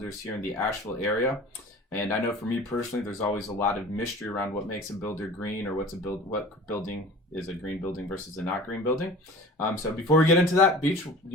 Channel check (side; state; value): both; normal; correlation 0.41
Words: here in the Asheville area. And I know for me personally, there's always a lot of mystery around what makes a builder green or what building is a green building versus a not green building. So before we get into that, Beach, do